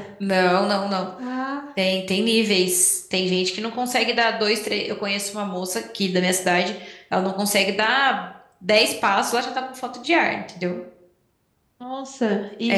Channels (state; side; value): identical; both; correlation 1.00